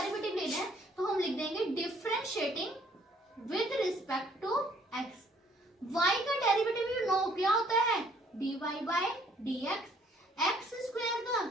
लेना है तो हम लिख देंगे differentiating with respect to x. y का डेरिवेटिव यू नो क्या होता है, dy by dx। X square का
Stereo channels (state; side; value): normal; both; correlation 0.62